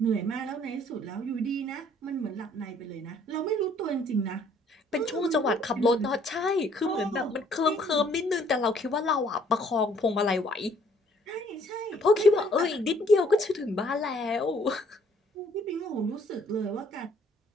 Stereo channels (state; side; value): normal; both; correlation 0.61